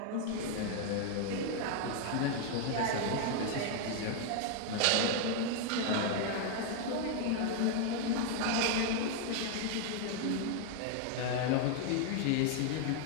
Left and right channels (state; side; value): different; both; correlation 0.00